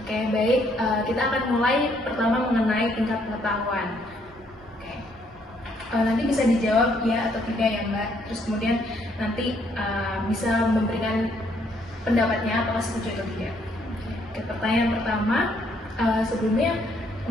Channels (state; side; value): normal; both; correlation 0.69